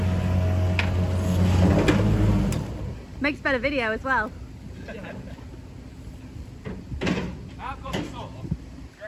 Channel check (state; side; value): identical; both; correlation 1.00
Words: Makes better video as well. Yeah. I've got the saw. Do you